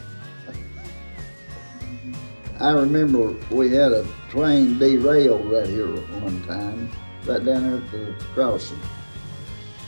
I remember we had a train derailed right here one time, right down there at the crossing.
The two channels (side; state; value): both; inverted; correlation -1.00